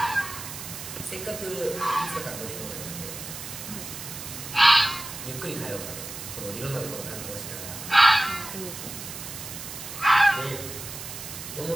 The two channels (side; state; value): right; noise; hiss, 9 dB below the sound